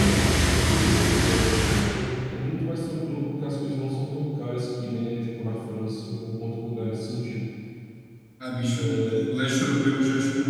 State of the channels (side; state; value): both; identical; correlation 1.00